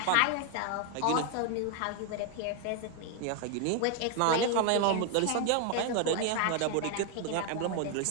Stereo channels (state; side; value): different; both; correlation 0.00